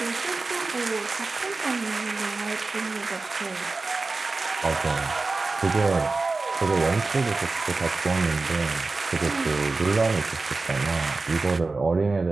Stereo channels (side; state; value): left; quieter; 3.7 dB